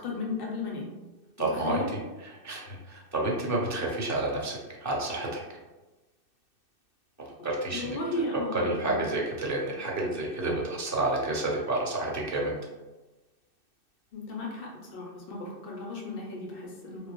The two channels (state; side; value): late; right; 2.6 ms